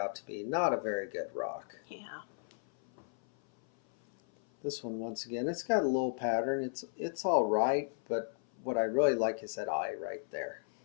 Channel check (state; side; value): silent; right; 55 dB below the other